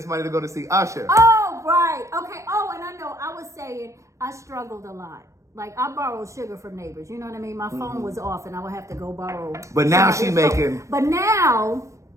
money to go to see Usher. Oh, right. Okay. Oh, and I know I was saying I struggled a lot. Like, I borrowed sugar from neighbors. You know what I mean? My phone was off and I would have to go borrow. But now somebody's she phone. making- But now...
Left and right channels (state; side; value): late; left; 0.15 ms